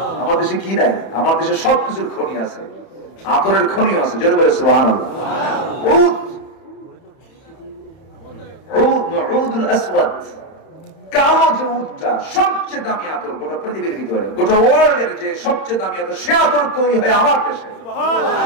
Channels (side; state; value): right; late; 31 ms